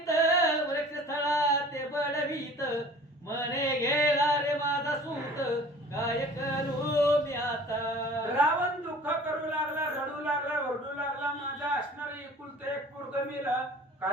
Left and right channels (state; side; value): normal; both; correlation 0.46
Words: वृक्ष स्थळा ते बडवीत. म्हणे गेला रे माझा सूत काय करू मी आता. रावण दुःख करू लागला, रडू लागला, ओरडू लागला. माझा असणारे एकुलते एक पोरग मेलं,